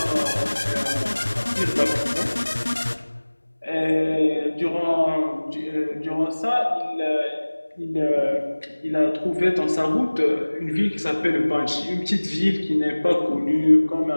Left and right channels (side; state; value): both; inverted; correlation -1.00